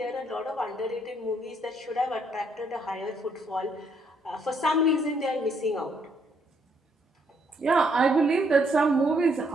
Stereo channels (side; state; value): both; normal; correlation 0.71